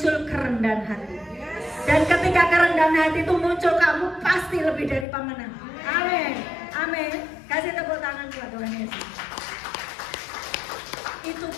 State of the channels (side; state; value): right; drops out; at 5.1 s